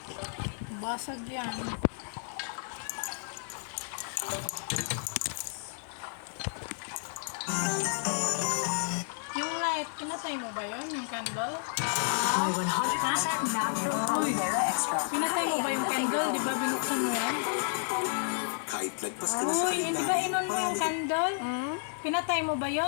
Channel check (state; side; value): silent; right; digital silence